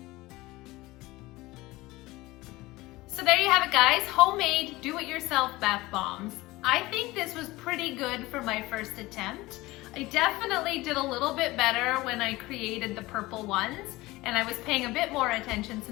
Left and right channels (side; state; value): right; quieter; 19.9 dB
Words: So there you have it, guys. Homemade, do-it-yourself bath bombs. I think this was pretty good for my first attempt. I definitely did a little bit better when I created the purple ones, and I was paying a bit more attention